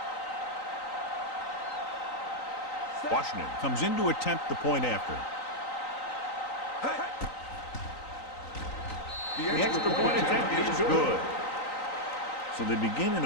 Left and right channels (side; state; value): right; late; 3.9 ms